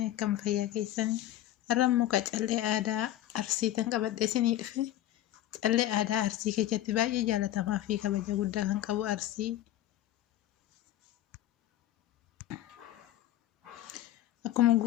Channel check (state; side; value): quieter; right; 13.4 dB